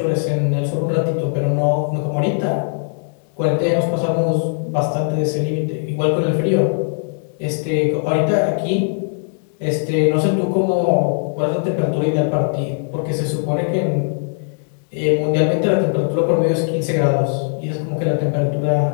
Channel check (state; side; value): silent; right; digital silence